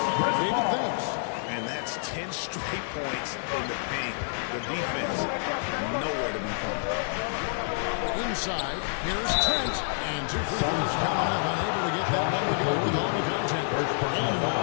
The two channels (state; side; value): silent; right; digital silence